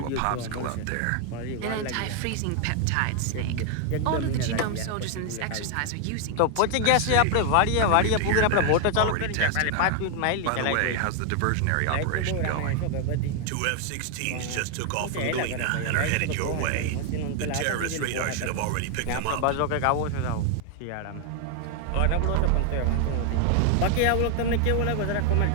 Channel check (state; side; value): different; both; correlation 0.00